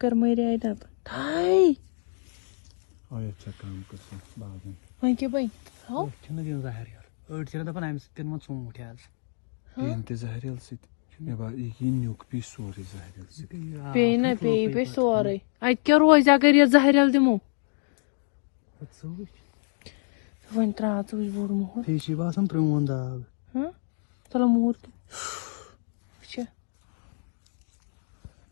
کر مٔرۍ دَب تھاے اوے ژےٚ کٲم کٔرسٕن باغن وۄنۍ کیٛاہ بَنہِ أسۍ چھِنہٕ دِوان زہریٖل أڑۍ چھِنہٕ دَپان اَمہِ سۭتۍ دِنہٕ وۄنۍ ژوٗنٛٹھۍ حظ ییٚمہِ تہِ زہریٖل سۭتۍ مےٚ باسان یہِ یی نیُک پیٚیہِ سورُے زہریٖل سۭتۍ پیٚیہِ نا پیٚیہِ سورُے اَتہِ کیٛاہ روزِ اگر یہِ زہریٖل دِمو وۄنۍ ترٛاو ژٕ وٕچھ بوٚڑ موہر بیٚیہِ چھِ باسان پرٛون داغ چلو موٗر تہِ وٕچھِ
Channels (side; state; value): right; silent; digital silence